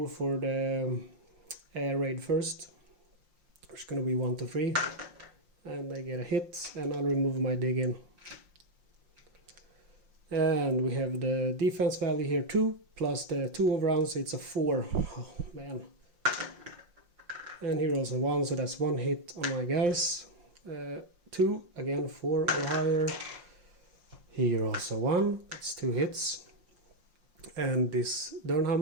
for the air raid first. It's going to be 1 to 3, and they get a hit, and I'll remove my dig in. And we have the defense value here 2 plus the 2 overruns, it's a 4. Oh man. And here also 1, so that's 1 hit on my guys. 2, again 4 or higher. Here also 1, that's 2 hits. And this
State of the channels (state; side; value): late; left; 5.7 ms